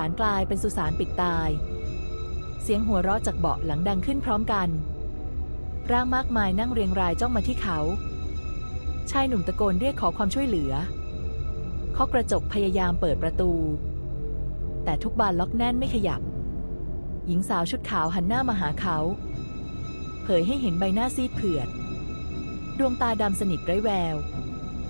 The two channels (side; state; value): both; inverted; correlation -1.00